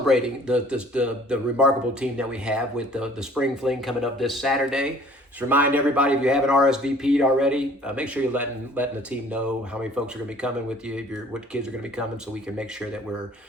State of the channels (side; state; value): both; normal; correlation 0.53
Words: the remarkable team that we have with the Spring Fling coming up this Saturday. Just remind everybody, if you haven't RSVP'd already, make sure you're letting the team know how many folks are going to be coming with you, what kids are going to be coming, so we can make sure that we're